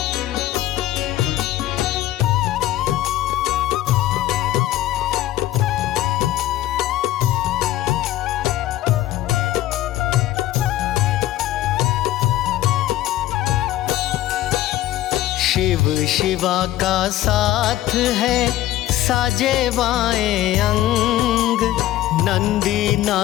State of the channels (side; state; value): right; quieter; 14.5 dB